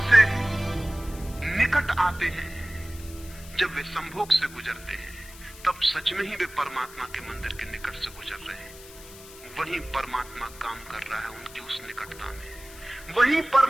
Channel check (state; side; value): noise; left; hiss, 18 dB below the sound